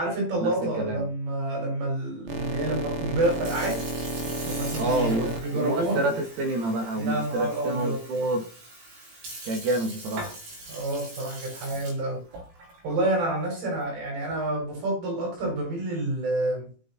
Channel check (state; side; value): late; left; 18 ms